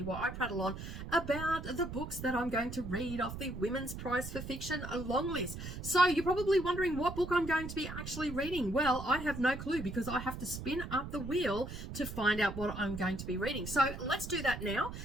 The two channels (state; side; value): noise; right; rumble, 9 dB below the sound